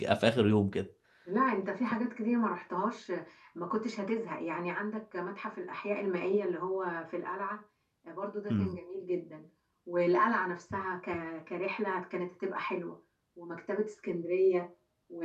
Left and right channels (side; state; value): both; identical; correlation 1.00